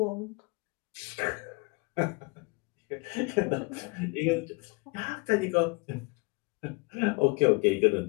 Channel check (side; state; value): right; quieter; 29.3 dB